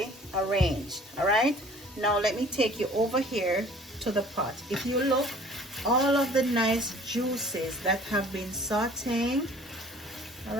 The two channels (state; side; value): normal; both; correlation 0.51